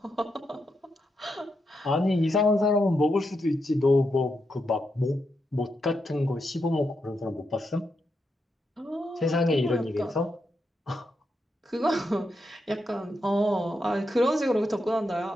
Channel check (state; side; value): normal; both; correlation 0.84